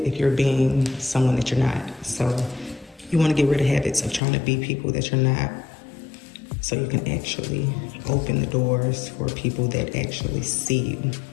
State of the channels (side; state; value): right; drops out; at 4.2 s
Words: you're being someone that you're not? So you want to get rid of habits of trying to be people that you're not, so you can actually open the doors for people that actually see you.